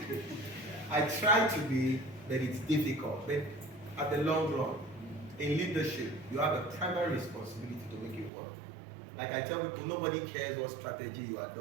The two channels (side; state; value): left; drops out; at 8.3 s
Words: I try to be, but it's difficult. But at the long run, in leadership, you have a primary responsibility to make it work. Like I tell people, nobody cares what strategy you